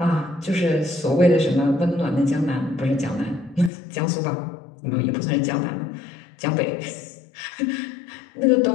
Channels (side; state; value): right; drops out; at 3.7 s